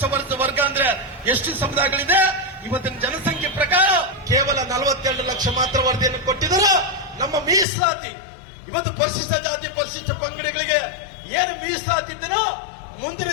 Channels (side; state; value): right; drops out; at 7.7 s